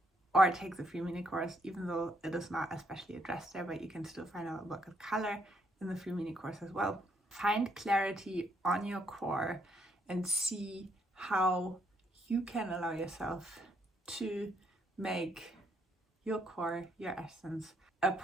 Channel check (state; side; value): normal; both; correlation 0.72